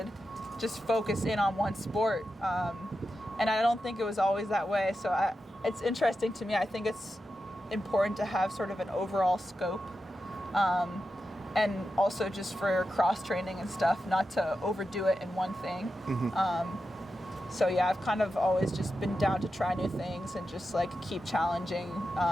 just focus in on one sport. And I don't think it was always that way. So it's interesting to me. I think it's important to have sort of an overall scope. And also just for cross-training and stuff, not to overdo it in one thing. Mm-hmm. So yeah, I've kind of always just been down to try new things and just like keep challenging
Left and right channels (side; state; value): both; normal; correlation 0.90